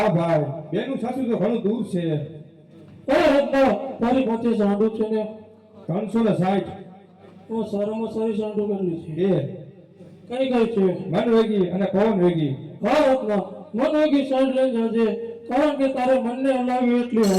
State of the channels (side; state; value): both; identical; correlation 1.00